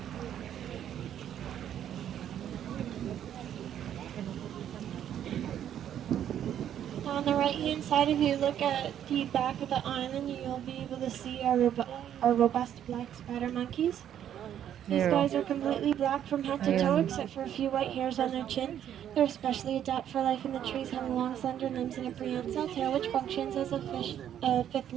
On the right hand side, if you look at the back of the island, you'll be able to see our robust black spider monkeys. These There. guys are completely black from head to toe, except for a few white hairs on their chin. They're especially adapted for life in the trees, having long, slender limbs and a prehensile tail, which functions as a fifth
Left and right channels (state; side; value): quieter; left; 10.2 dB